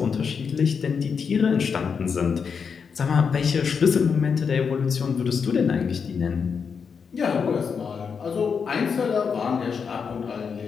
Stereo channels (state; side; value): quieter; right; 6.1 dB